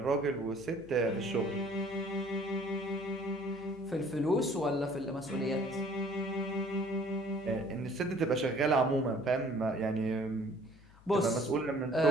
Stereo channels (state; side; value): noise; left; hum, 24 dB below the sound